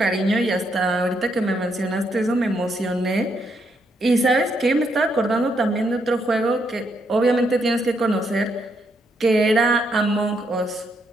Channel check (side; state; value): both; normal; correlation 0.76